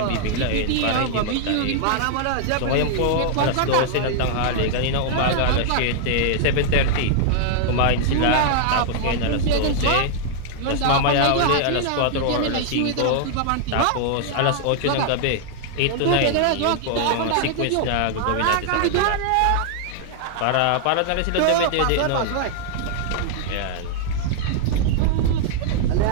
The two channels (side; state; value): both; different; correlation -0.01